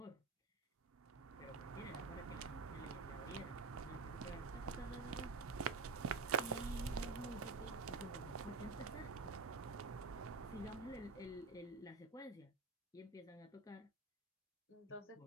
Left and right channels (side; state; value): left; quieter; 4.1 dB